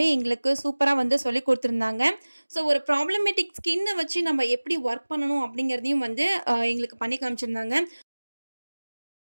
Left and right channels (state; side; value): inverted; both; correlation -1.00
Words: எங்களுக்கு சூப்பராக வந்து சொல்லி கொடுத்துருந்தாங்க. ஸோ ஒரு ப்ராப்ளமேட்டிக் ஸ்கின்னை வச்சு நம்ம எப்படி ஒர்க் பண்ணணும் அப்படிங்கிறதையும் வந்து எங்களுக்கு பண்ணி காமிச்சிருந்தாங்க.